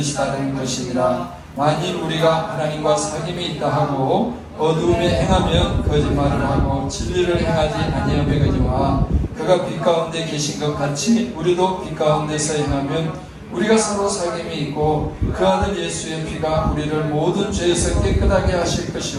것이니라. 만일 우리가 하나님과 사귐이 있다 하고 어두움에 행하면 거짓말을 하고 진리를 행하지 아니하거니와 그가 빛 가운데 계신 것 같이 우리도 빛 가운데서 행하면 우리가 서로 사귐이 있고 그 아들 예수의 피가 우리를 모든 죄에서 깨끗하게 하실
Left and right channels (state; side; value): identical; both; correlation 1.00